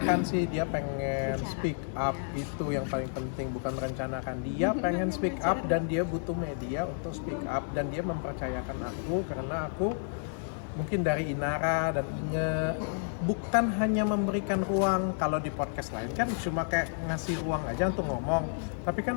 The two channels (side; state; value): right; silent; 57 dB below the other